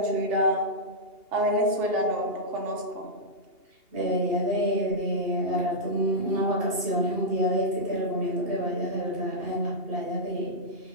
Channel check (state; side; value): late; left; 2.8 ms